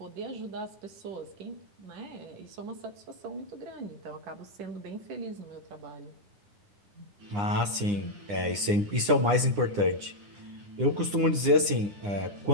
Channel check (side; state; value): left; late; 9.9 ms